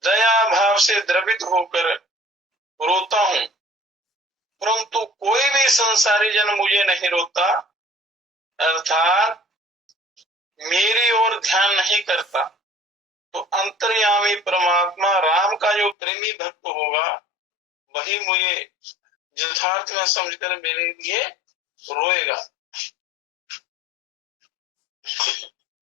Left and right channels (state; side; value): drops out; right; at 16.0 s